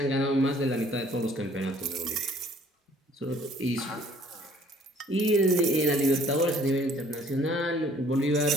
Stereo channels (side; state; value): both; normal; correlation 0.57